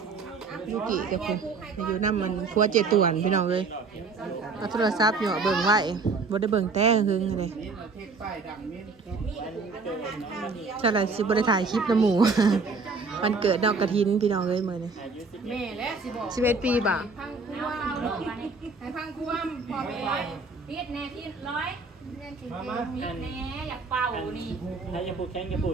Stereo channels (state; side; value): quieter; left; 4.2 dB